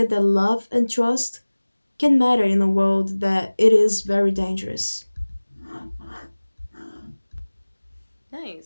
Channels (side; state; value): both; inverted; correlation -1.00